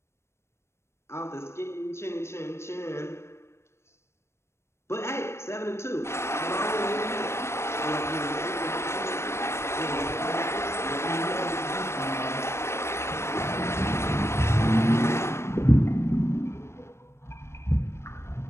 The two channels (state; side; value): late; right; 0.13 ms